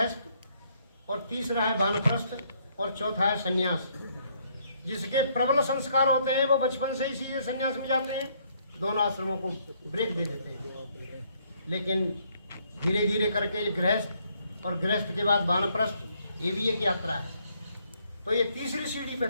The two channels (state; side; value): inverted; both; correlation -0.69